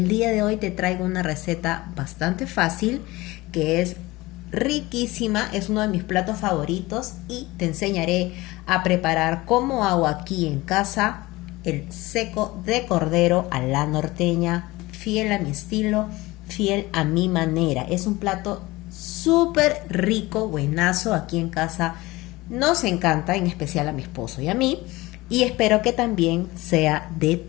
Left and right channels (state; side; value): quieter; right; 20.4 dB